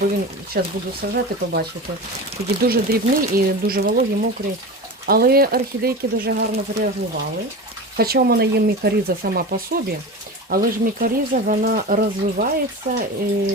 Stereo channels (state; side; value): normal; both; correlation 0.28